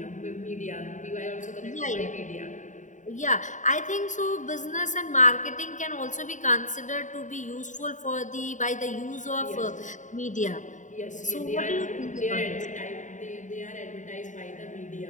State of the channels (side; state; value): right; late; 0.36 ms